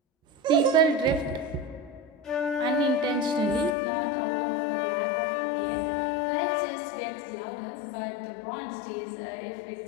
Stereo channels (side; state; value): right; drops out; at 3.8 s